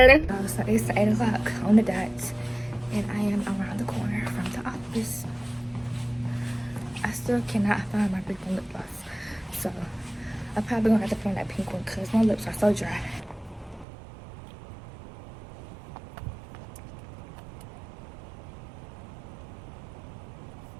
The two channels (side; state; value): left; drops out; at 13.9 s